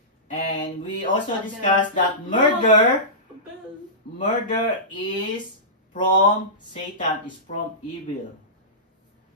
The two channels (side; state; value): both; normal; correlation -0.19